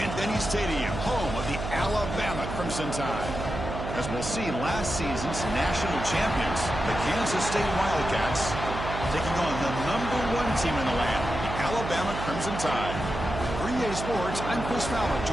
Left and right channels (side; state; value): right; noise; hum, 6 dB below the sound